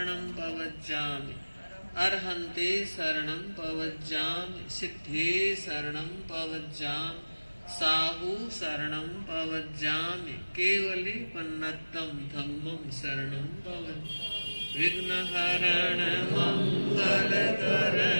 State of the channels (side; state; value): both; inverted; correlation -1.00